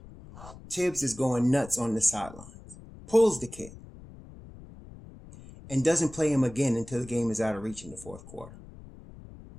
Tibbs is going nuts on the sidelines, pulls the kid, and doesn't play him again until the game is out of reach in the fourth quarter.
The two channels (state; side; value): noise; left; rumble, 18 dB below the sound